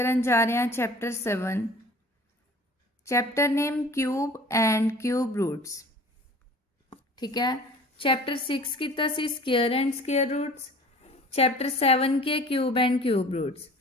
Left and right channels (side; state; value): both; normal; correlation 0.45